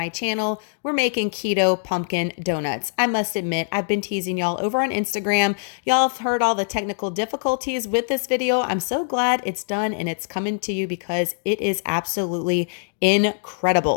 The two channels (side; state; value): right; silent; digital silence